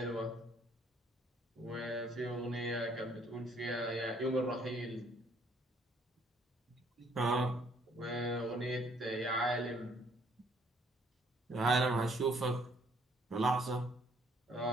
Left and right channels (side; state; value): both; normal; correlation 0.64